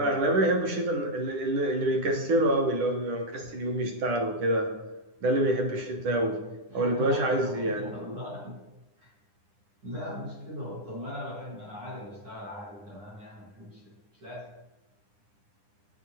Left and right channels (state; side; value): late; left; 9.9 ms